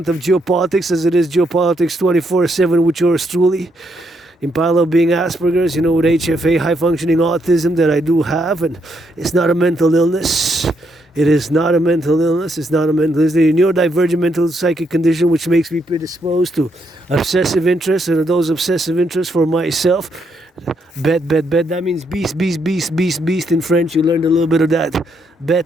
of geopolitics, as it is geopolitics 24/7 with yours truly. In parallel being Asperger's, with HFA, high functioning autism that I do have, and it's not a mental illness. It is not a mental illness. It's not a mental illness. It's a neurodivergent mental psychic condition which makes me predisposed to obsessive interests, and those obsessive interests for myself. Bet. That means beast in French. You learned a little bit of that.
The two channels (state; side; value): normal; both; correlation 0.76